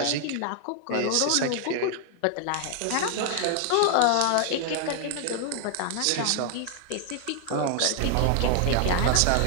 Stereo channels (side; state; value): both; different; correlation 0.00